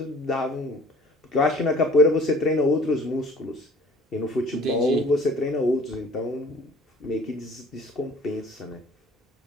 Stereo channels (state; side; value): normal; both; correlation 0.52